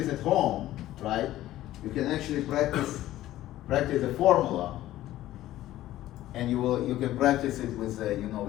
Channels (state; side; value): quieter; right; 14.5 dB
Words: at home, right, you can actually practice the formula, and you can practice it with